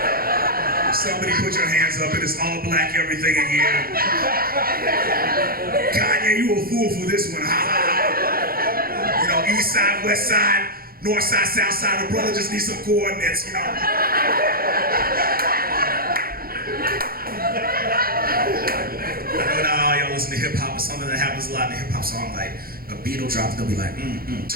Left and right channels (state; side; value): late; left; 0.43 ms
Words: Somebody put your hands up, it is all black everything in here. Kanye, you a fool for this one, ha ha ha. You know, east side, west side, north side, south side, the brother just needs some coordinates, you know. I know y'all listen to hip hop, it's something that happens a lot in a hip hop song, like a beat will drop, they'll be like,